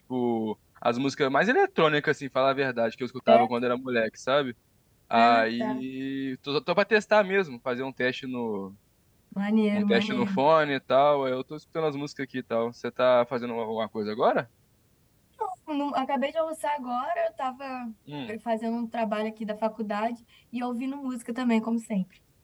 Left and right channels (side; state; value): both; identical; correlation 1.00